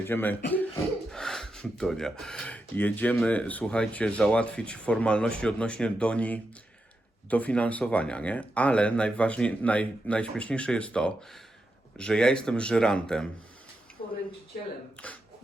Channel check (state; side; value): normal; both; correlation 0.87